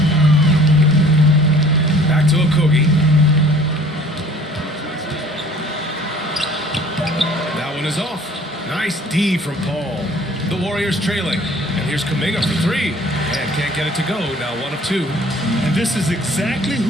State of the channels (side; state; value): both; normal; correlation 0.52